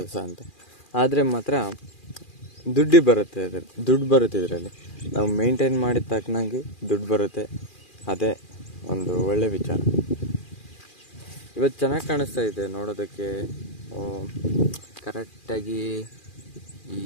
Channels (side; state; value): right; late; 2.4 ms